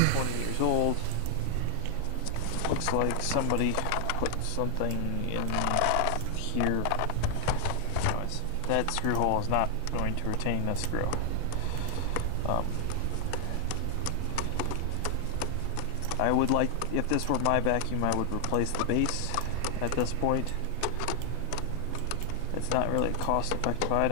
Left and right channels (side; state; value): both; different; correlation 0.00